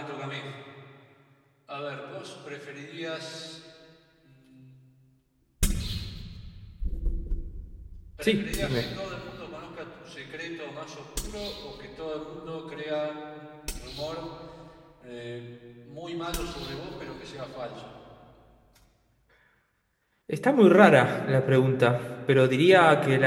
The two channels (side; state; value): both; identical; correlation 1.00